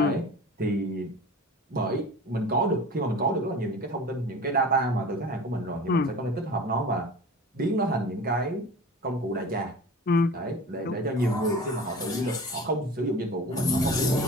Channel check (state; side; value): normal; both; correlation 0.38